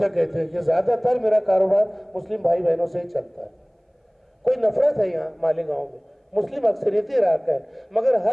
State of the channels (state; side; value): identical; both; correlation 1.00